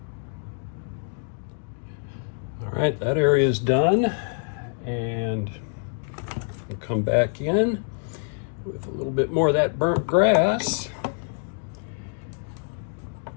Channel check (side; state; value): right; silent; 59 dB below the other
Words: All right, that area is done, and we'll come back in with a little bit more of that burnt grass,